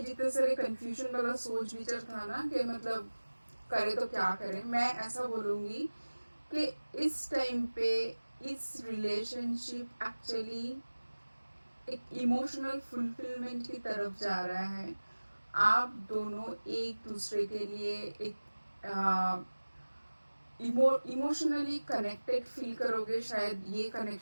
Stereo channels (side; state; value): both; inverted; correlation -1.00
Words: जितने सारे कंफ्यूजन वाला सोच विचार था ना कि मतलब करे तो क्या करें। मैं ऐसा बोलूँगी कि इस टाइम पे इस रिलेशनशिप एक्चुअली एक इमोशनल फुलफिलमेंट की तरफ जा रहा है। आप दोनों एक दूसरे के लिए एक इमोशनली कनेक्टेड फील करोगे। शायद ये